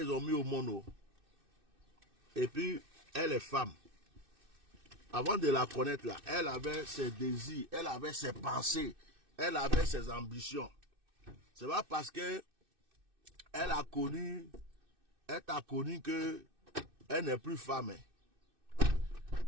ont mis au monde. Et puis, elle est femme. Avant de la connaître là, elle avait ses désirs, elle avait ses pensées, elle avait ses ambitions. C'est pas parce que elle t'a connu que elle n'est plus femme.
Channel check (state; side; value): late; left; 2.6 ms